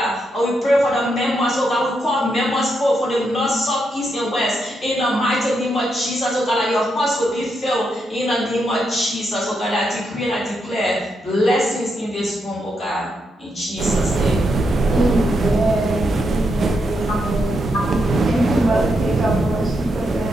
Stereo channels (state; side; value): normal; both; correlation 0.81